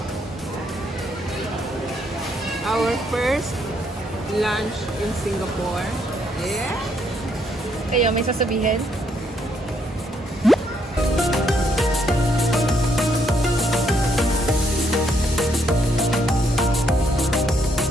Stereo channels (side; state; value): both; normal; correlation 0.73